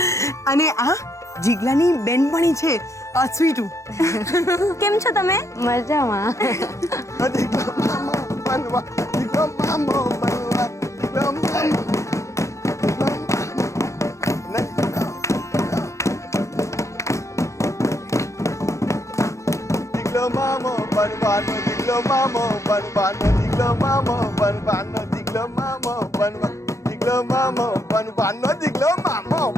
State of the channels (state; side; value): late; right; 0.15 ms